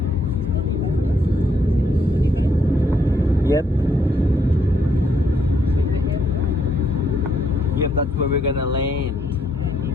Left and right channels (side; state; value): both; normal; correlation 0.72